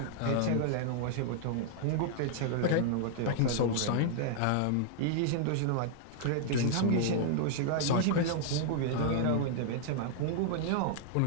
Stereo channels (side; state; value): both; different; correlation -0.01